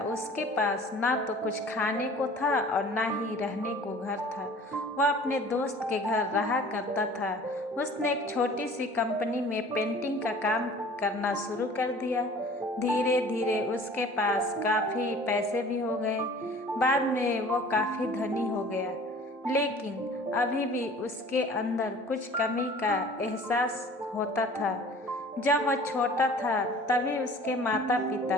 उसके पास ना तो कुछ खाने को था और ना ही रहने को घर था। वह अपने दोस्त के घर रहा करता था। उसने एक छोटी सी कंपनी में पेंटिंग का काम करना शुरू कर दिया। धीरे धीरे उसके पास काफ़ी पैसे भी हो गए। बाद में वो काफ़ी धनी हो गया, लेकिन अभी भी उसके अंदर कुछ कमी का एहसास होता था। जब वह छोटा था तभी उसके माता पिता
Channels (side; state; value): both; normal; correlation 0.47